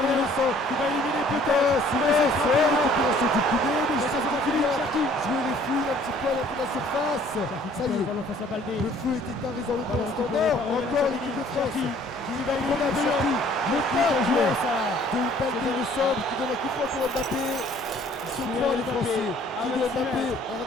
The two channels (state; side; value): normal; both; correlation 0.57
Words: éliminer peut-être. Récupération du coup mais je sais pas jouer les fouilles un petit peu à l'entrée de la surface. Ça y est, le feu est éteint, réservé pour l'instant. Encore l'équipe de France qui va éliminer Cherki. Le tacle de Baldé le sobre qui donne un coup franc pour Mbappé. Ils sont trois les Français. Kylian Mbappé,